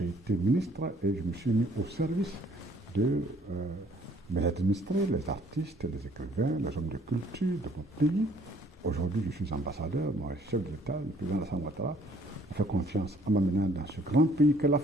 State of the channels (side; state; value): both; normal; correlation 0.60